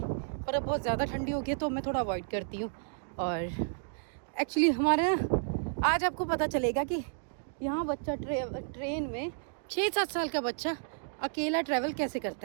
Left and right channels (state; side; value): silent; left; digital silence